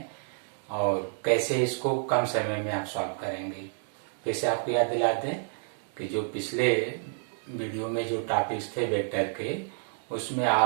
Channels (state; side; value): silent; left; digital silence